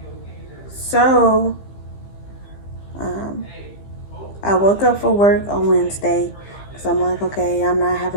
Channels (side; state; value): right; late; 15 ms